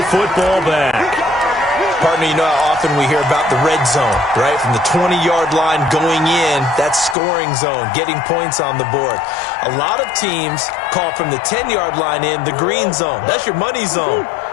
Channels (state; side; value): drops out; right; at 7.2 s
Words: football back. Partner, you know how often we hear about the red zone, right? From the 20-yard line going in, that's scoring zone, getting points on the board. A lot of teams call from the 10-yard line in the green zone. That's your money zone.